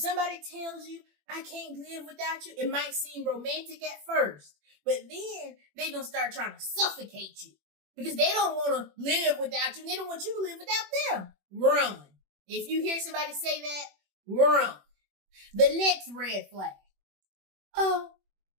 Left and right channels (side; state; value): left; late; 21 ms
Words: tells you, I can't live without you, it might seem romantic at first, but then they're going to start trying to suffocate you because they don't want to live without you. And they don't want you to live without them. Run. If you hear somebody say that, run. The next red flag. Oh,